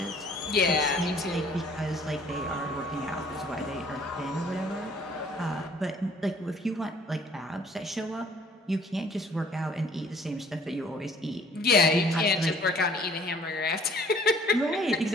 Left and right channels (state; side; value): normal; both; correlation 0.56